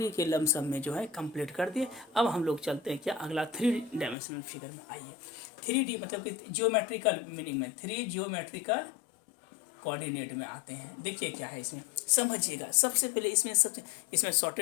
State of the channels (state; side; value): drops out; right; at 4.2 s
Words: के लमसम में जो है कंप्लीट कर दिए। अब हम लोग चलते हैं क्या अगला 3 डायमेंशनल फिगर में। आइए 3D मतलब कि जियोमेट्रिकल मीनिंग में 3 जियोमेट्रिकल कोऑर्डिनेट में आते हैं। देखिए क्या है इसमें, समझिएगा। सबसे पहले इसमें